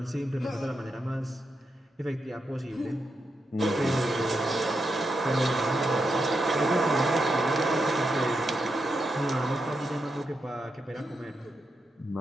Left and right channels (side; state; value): both; normal; correlation 0.85